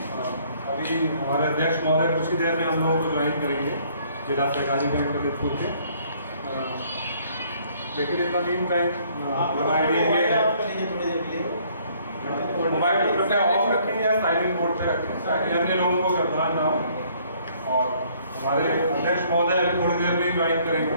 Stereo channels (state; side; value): inverted; both; correlation -0.62